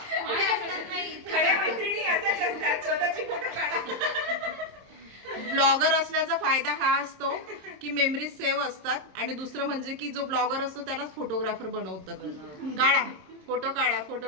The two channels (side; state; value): left; late; 27 ms